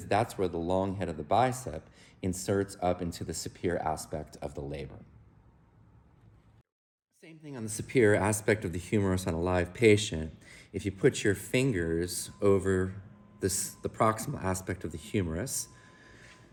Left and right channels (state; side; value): identical; both; correlation 1.00